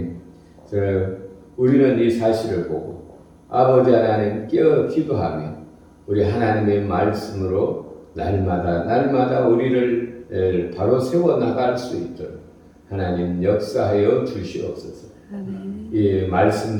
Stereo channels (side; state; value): both; identical; correlation 1.00